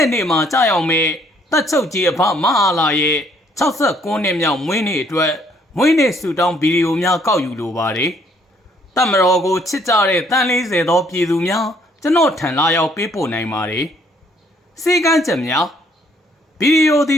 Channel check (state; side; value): normal; both; correlation 0.65